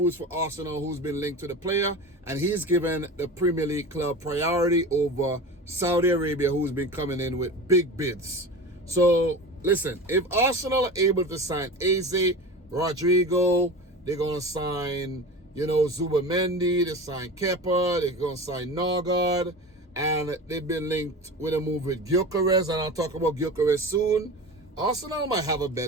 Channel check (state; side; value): normal; both; correlation 0.32